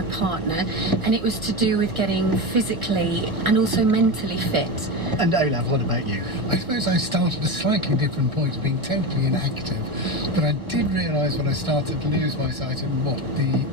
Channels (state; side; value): late; left; 2.0 ms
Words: partner, and it was to do with getting physically and also mentally fit. And Olaf, what about you? I suppose I started at a slightly different point of being totally inactive, but I did realise when I started to lose my sight in